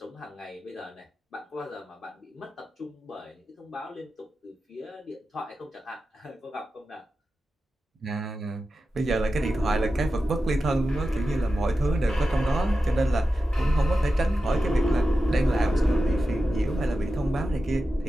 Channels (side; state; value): both; normal; correlation 0.92